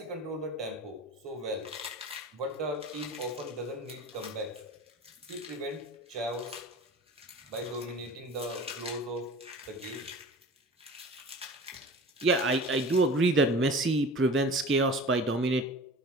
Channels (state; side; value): normal; both; correlation 0.39